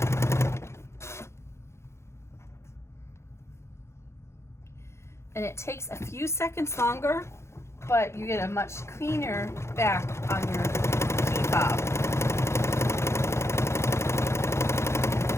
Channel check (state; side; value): late; right; 0.13 ms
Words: And it takes a few seconds longer, but you get a much cleaner back on your key fob.